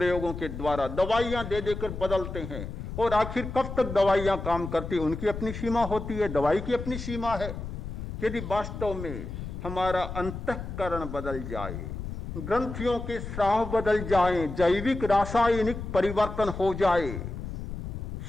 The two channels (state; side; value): noise; left; rumble, 7 dB below the sound